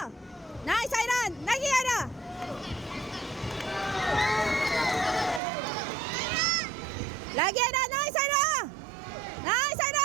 Nice Aidan. Lagi ada. Lagi ada. Nice Aida. Nice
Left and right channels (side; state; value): left; drops out; at 5.4 s